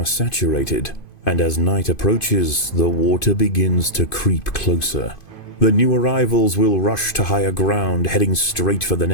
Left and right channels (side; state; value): right; late; 2.5 ms